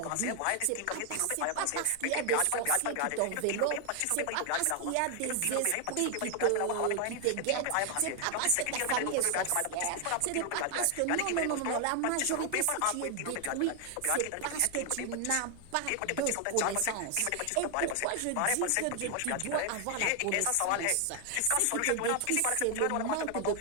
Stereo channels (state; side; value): different; both; correlation 0.00